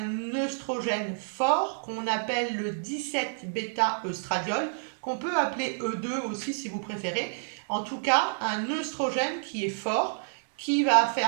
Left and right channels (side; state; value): left; silent; digital silence